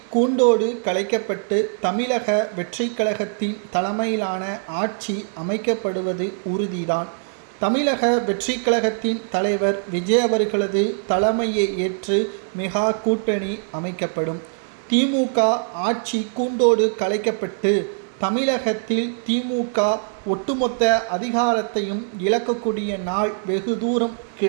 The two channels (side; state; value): left; silent; digital silence